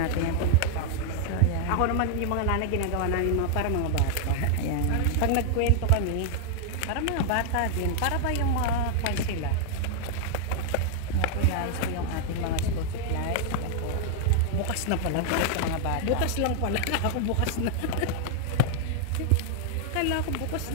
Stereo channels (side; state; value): both; different; correlation -0.01